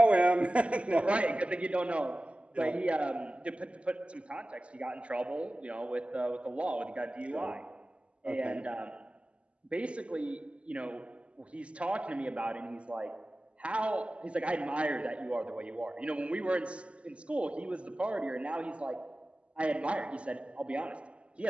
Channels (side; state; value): left; late; 0.058 ms